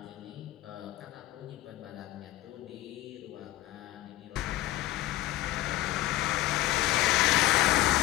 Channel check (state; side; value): quieter; right; 15.9 dB